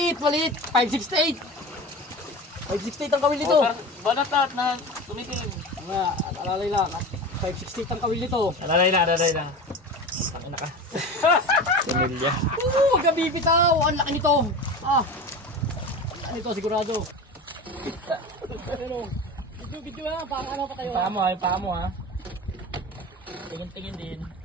568. 568 ang kawil nito. Balatat na tumitingin. Nga, alalay lang. 568 ang kawil nito. Alalay lang. Tangina ka. Similya. Oo, huwag ka bibitaw. Ang laki nito. Ang laki nito, sigurado. Ano? Video lang. Parang ano pa kayo? Yung paa mo ha. Tingin din.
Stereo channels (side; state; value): both; normal; correlation 0.31